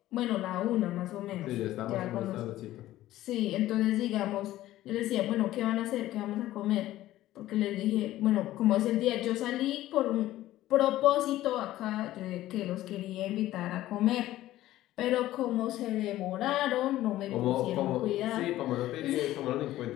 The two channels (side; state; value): right; quieter; 14.9 dB